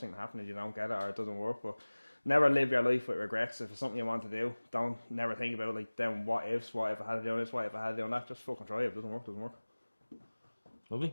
thing that happens is you don't get it or it doesn't work. But never live your life with regrets. If it's something you want to do, don't never think about like then what if I had to do this, what if I had to do that. Just fucking try it. If it doesn't work, it doesn't work.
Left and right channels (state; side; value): inverted; both; correlation -1.00